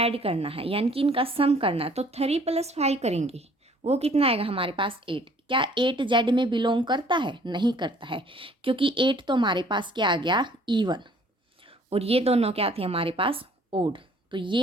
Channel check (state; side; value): normal; both; correlation 0.57